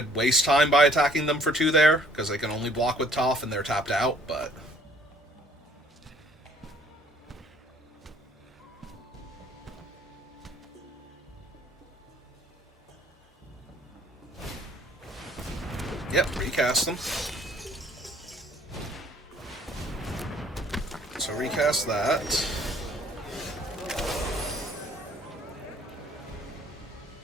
waste time by attacking them for 2 there, because they can only block with Toph and they're tapped out, but... Yep, recast them. So recast that.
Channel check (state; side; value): normal; both; correlation 0.59